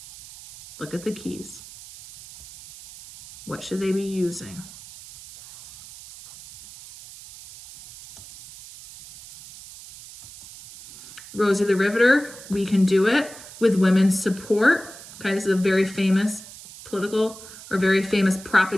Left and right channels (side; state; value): right; noise; hiss, 17 dB below the sound